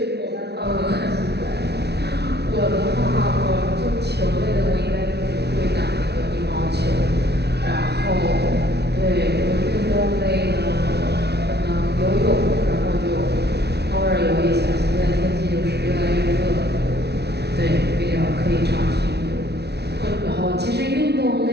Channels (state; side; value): late; left; 0.49 ms